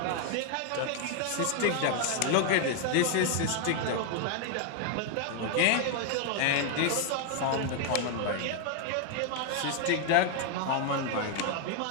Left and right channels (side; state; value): both; different; correlation 0.00